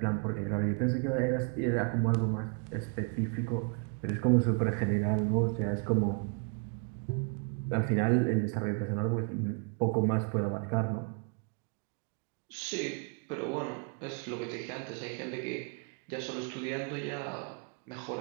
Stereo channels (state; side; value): quieter; left; 37.1 dB